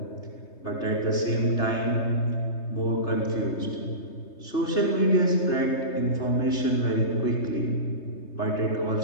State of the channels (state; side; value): late; right; 3.3 ms